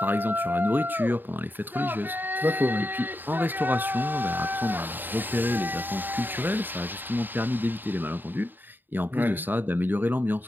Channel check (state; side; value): late; left; 0.092 ms